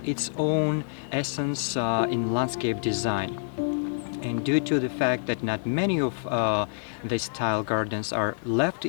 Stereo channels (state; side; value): silent; right; digital silence